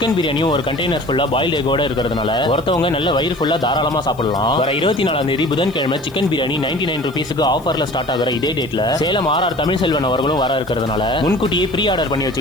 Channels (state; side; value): noise; left; hiss, 26 dB below the sound